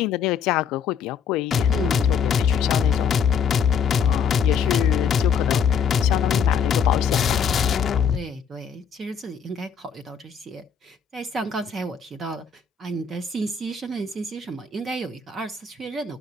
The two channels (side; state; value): right; quieter; 6.6 dB